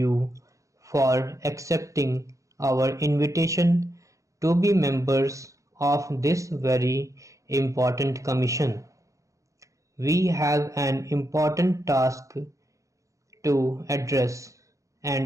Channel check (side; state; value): left; late; 0.15 ms